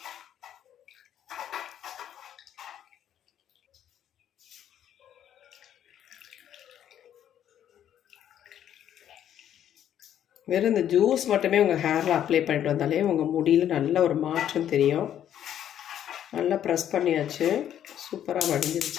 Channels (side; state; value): right; quieter; 10.4 dB